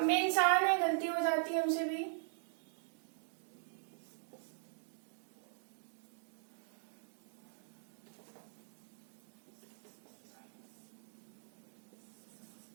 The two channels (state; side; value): silent; left; digital silence